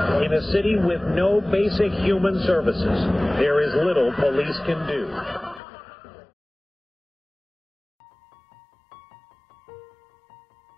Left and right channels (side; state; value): right; drops out; at 5.6 s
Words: In a city with no basic human services, there is little police can do. On August 29,